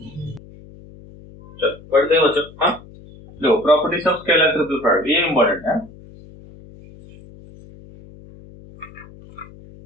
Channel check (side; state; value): left; noise; hum, 21 dB below the sound